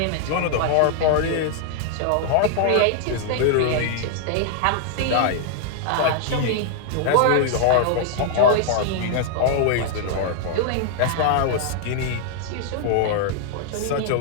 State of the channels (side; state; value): both; different; correlation 0.00